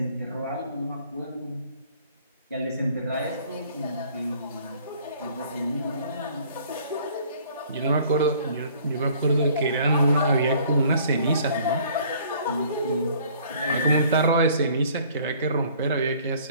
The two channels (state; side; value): inverted; both; correlation -0.55